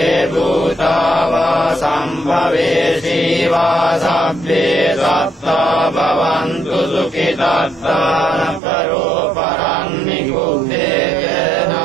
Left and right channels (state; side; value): drops out; left; at 8.6 s